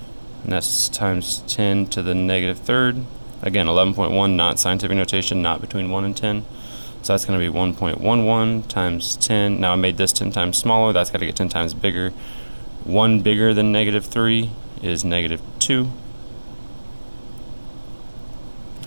that's times 10 to the negative 3rd. Again, 11.1, not scientific notation, not between 1 and 10. So that's going to be 1.11 times 10. Now I made this 10 times smaller. That's got to get 10 times bigger. 1 bigger than negative 3 is negative 2.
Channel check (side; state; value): both; inverted; correlation -1.00